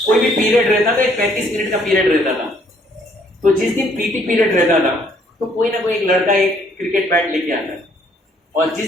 कोई भी पीरियड रहता था, एक 35 मिनट का पीरियड रहता था। तो जिस दिन पीटी पीरियड रहता था तो कोई ना कोई एक लड़का एक क्रिकेट बैट लेके आता, और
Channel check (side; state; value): both; normal; correlation 0.65